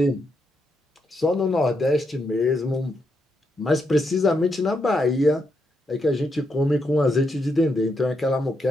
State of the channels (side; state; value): both; normal; correlation 0.81